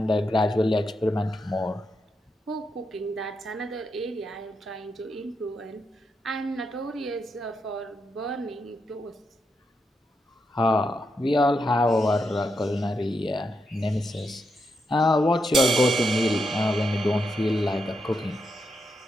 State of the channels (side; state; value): both; normal; correlation 0.83